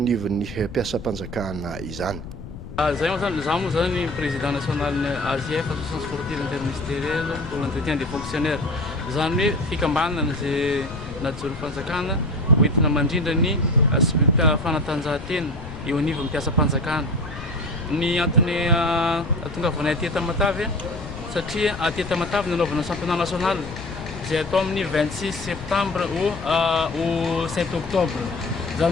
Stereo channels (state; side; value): noise; left; rumble, 12 dB below the sound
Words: anivon'ny mpiasam-panjakana izany. Zay moa zany président national ny AJF association sportive interministérielle pour l'entretien des fonctionnaires zany hoe fikambanana zay najoro fanjakana hoentina mandrindra ny fanatanjahantena eo anivon'ny mpiasam-panjakana. Ny antony atongavanay aty Tamatavy satria aty Tamatavy nanaovana championnat national zay atao amin'ny 26 septembre au 7 octobre